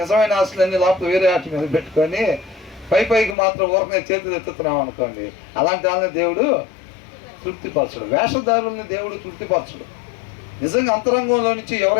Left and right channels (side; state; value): right; drops out; at 3.4 s